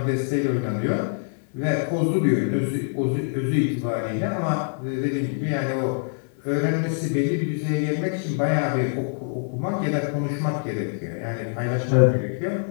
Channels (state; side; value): silent; right; 62 dB below the other